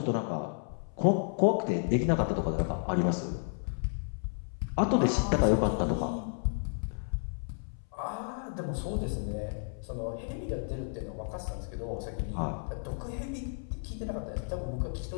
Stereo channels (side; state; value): right; silent; 56 dB below the other